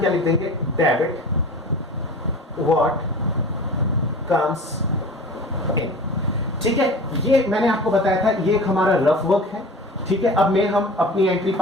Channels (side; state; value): both; normal; correlation 0.38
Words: लिख देंगे, डेबिट व्हाट कम्स इन। ठीक है, ये मैंने आपको बताया था, ये एक हमारा रफ वर्क है। ठीक है, अब में हम अपनी एंट्री